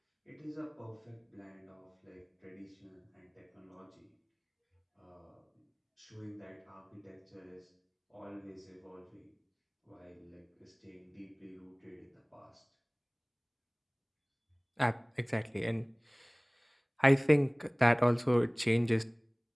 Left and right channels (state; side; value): identical; both; correlation 1.00